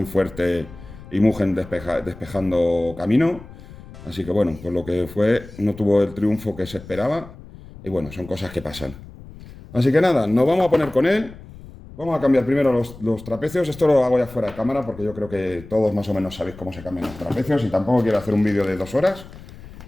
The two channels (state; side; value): noise; left; rumble, 17 dB below the sound